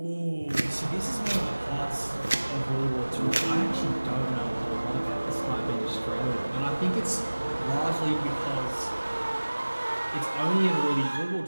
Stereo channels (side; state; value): both; inverted; correlation -1.00